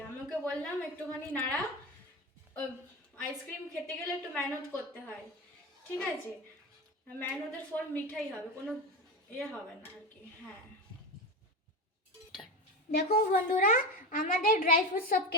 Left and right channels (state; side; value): normal; both; correlation 0.21